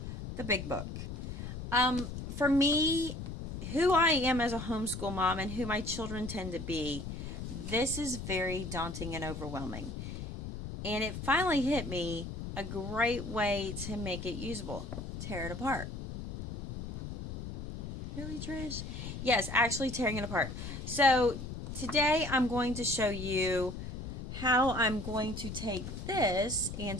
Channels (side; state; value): left; noise; rumble, 7 dB below the sound